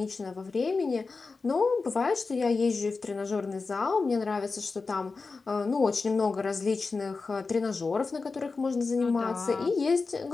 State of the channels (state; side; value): quieter; right; 4.2 dB